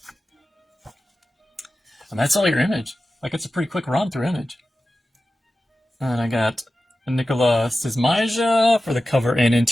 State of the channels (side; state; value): both; normal; correlation 0.94